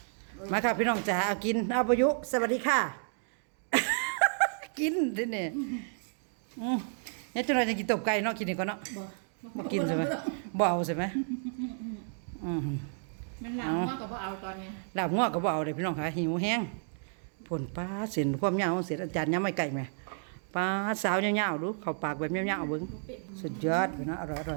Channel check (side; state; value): left; silent; 57 dB below the other